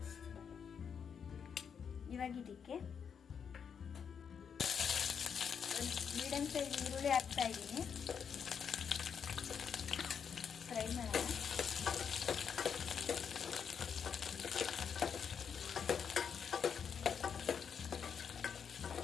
ಇವಾಗ ಇದಕ್ಕೆ ಮೀಡಿಯಂ ಸೈಜ್ ಈರುಳ್ಳಿ ಹಾಕ್ತಾ ಇದ್ದೀನಿ. ಫ್ರೈ ಮಾಡೋಣ.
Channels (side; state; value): right; quieter; 7.1 dB